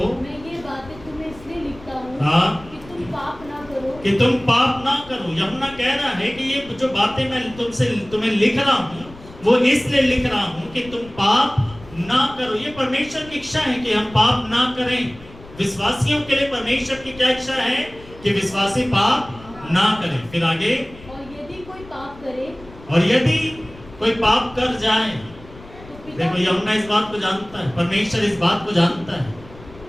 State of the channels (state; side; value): noise; left; rumble, 20 dB below the sound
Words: मैं ये बातें तुम्हें इसलिए लिखता हूँ कि तुम पाप ना करो। यूहन्ना कह रहा है कि ये जो बातें मैं तुम्हें लिख रहा हूँ वो इसलिए लिख रहा हूँ कि तुम पाप ना करो। ये परमेश्वर की इच्छा है कि हम पाप ना करें। विश्वासियों के लिए परमेश्वर की क्या इच्छा है? कि विश्वासी पाप ना करें। फिर आगे, और यदि कोई पाप कर जाए, देखो यूहन्ना इस बात को जानता है, परमेश्वर इस बात को जानता है।